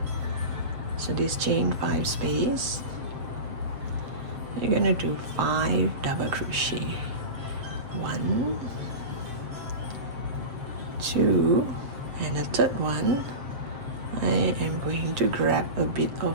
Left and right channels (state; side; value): late; left; 7.6 ms